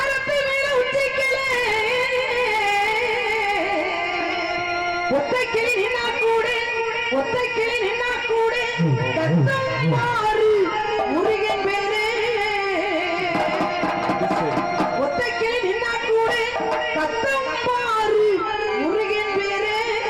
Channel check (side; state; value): both; identical; correlation 1.00